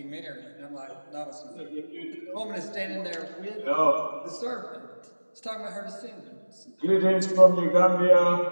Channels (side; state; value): both; inverted; correlation -1.00